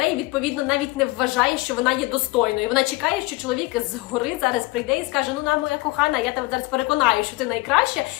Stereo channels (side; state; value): right; quieter; 22.4 dB